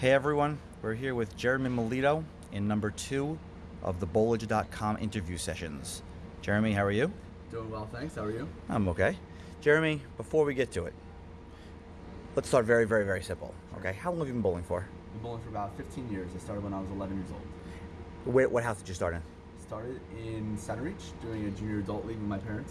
everyone, we're here with Jeremy Milito in number 2 of the Bowlage.com interview sessions. Jeremy, how are you? Doing well, thanks. How are you? I'm okay. Jeremy, before we get to it, let's start very, very, very simple. Okay, how long have you been bowling for? I've been bowling for about 15 years. I started when I was 11 years old. What house did you start in? Started in Center Reach, doing a junior adult league with my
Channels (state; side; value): identical; both; correlation 1.00